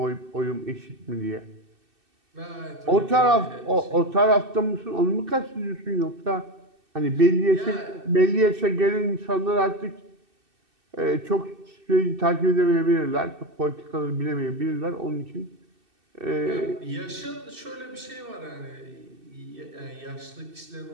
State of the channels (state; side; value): late; left; 2.6 ms